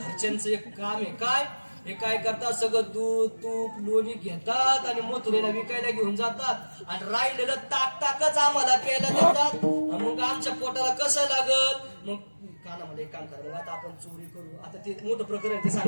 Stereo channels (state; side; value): inverted; both; correlation -1.00